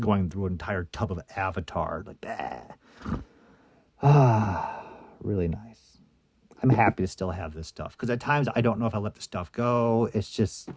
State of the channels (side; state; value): both; identical; correlation 1.00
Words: through an entire tub of Avatar. Like, really nice. I'm happy to still have this stuff because at times I don't know if I let the stuff go. It's just,